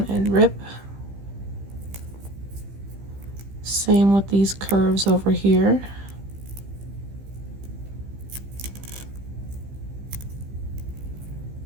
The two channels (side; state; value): left; late; 15 ms